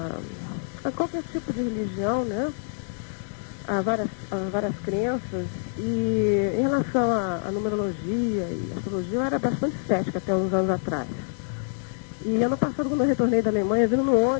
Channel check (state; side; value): silent; right; 59 dB below the other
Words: a qualquer tipo de religião, né? A várias crenças. E em relação à numerologia e astrologia, eu era bastante cética até uns anos atrás. E ano passado, quando eu retornei da Alemanha, vindo no